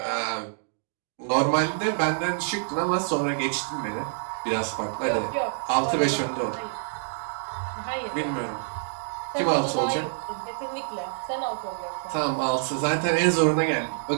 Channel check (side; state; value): left; silent; digital silence